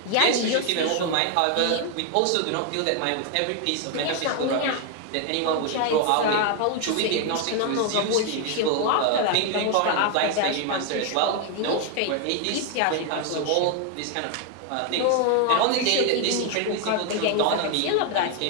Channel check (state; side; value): different; both; correlation 0.01